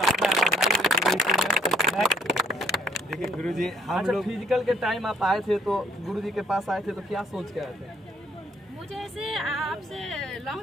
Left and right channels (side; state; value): both; normal; correlation 0.63